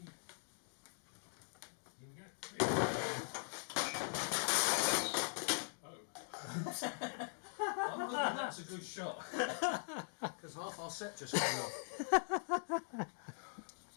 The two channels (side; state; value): right; silent; digital silence